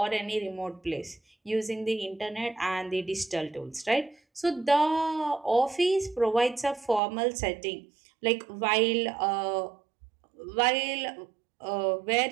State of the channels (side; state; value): left; drops out; at 7.0 s